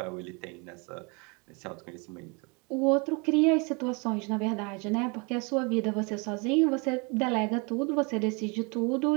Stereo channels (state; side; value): quieter; left; 31.1 dB